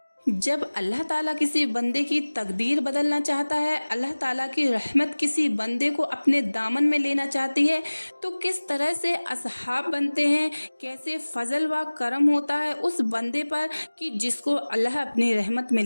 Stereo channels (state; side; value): inverted; both; correlation -1.00